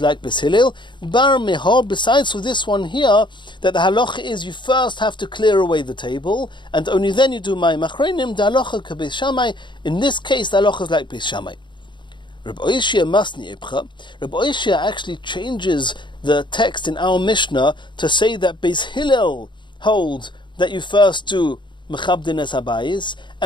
like Beis Hillel. Bar meha, besides for this one here, that the halacha is you first have to clear away the table, and only then you do mayim achronim. The halacha ke Beis Shammai. In this case, the halacha is like Beis Shammai. Rabbi Oishia masni epcha. Rabbi Oishia actually changes the text in our Mishnah to say that Beis Hillel holds that you first do mechabdin es habayis,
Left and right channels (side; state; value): right; late; 0.23 ms